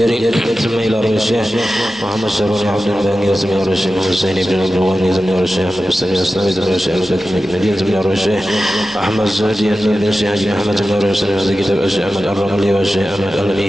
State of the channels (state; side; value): normal; both; correlation 0.93